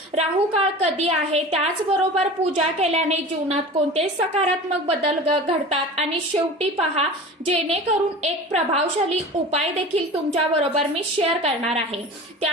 राहू काळ कधी आहे, त्याचबरोबर पूजा केल्याने जीवनात कोणते सकारात्मक बदल घडतात आणि शेवटी पहा, जेणेकरून एक प्रभावशाली उपाय देखील तुमच्या बरोबर मी शेअर करणार आहे.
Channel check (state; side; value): normal; both; correlation 0.36